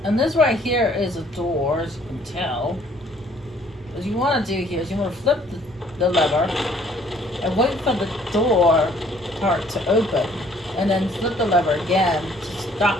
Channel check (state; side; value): normal; both; correlation 0.60